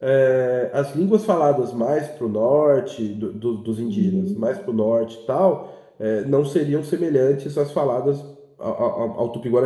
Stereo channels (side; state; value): both; identical; correlation 1.00